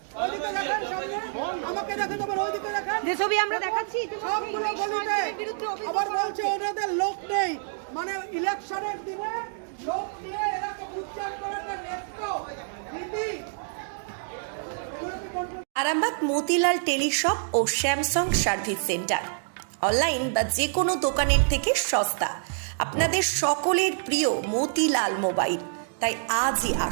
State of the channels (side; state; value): left; silent; digital silence